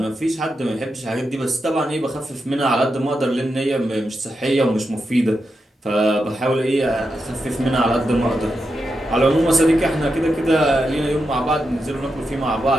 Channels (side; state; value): both; normal; correlation 0.87